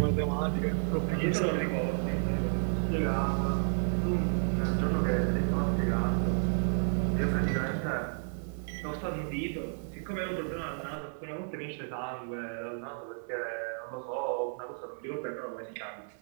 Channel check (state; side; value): silent; left; 56 dB below the other